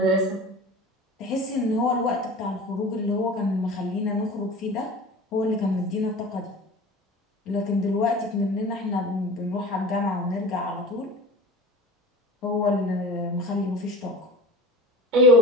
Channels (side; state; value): both; normal; correlation 0.36